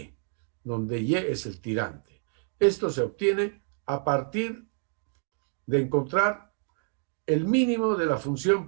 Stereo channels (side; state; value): left; silent; 57 dB below the other